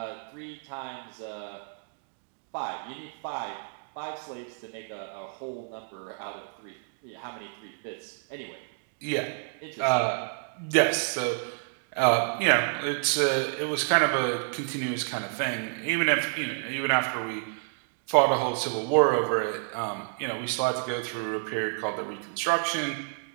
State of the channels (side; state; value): left; silent; digital silence